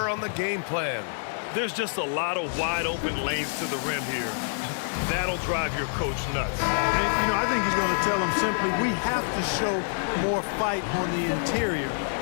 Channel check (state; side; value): silent; right; digital silence